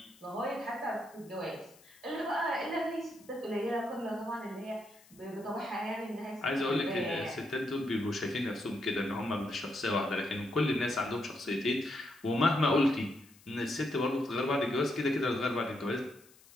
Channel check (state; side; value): noise; left; hiss, 26 dB below the sound